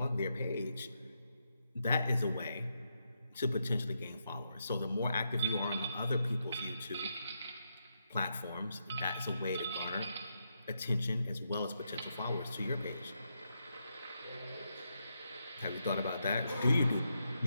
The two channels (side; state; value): both; inverted; correlation -0.82